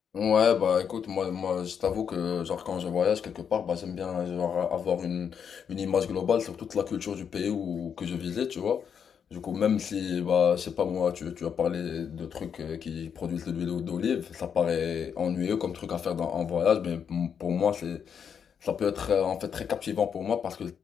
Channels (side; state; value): right; quieter; 7.4 dB